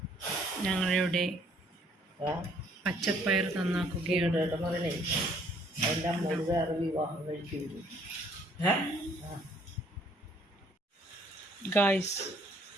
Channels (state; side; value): normal; both; correlation 0.62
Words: ഞങ്ങളിവിടെ പച്ചപ്പയർ നന്നാക്കുകയാണ്. ഗൈസ്,